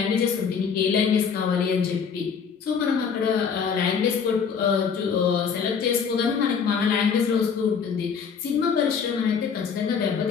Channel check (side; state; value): right; quieter; 6.4 dB